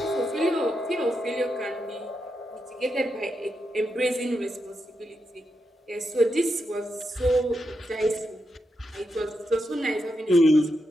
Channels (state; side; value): normal; both; correlation 0.85